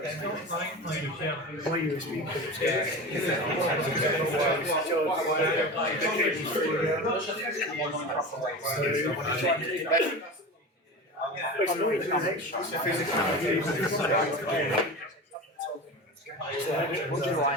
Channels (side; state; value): both; normal; correlation 0.29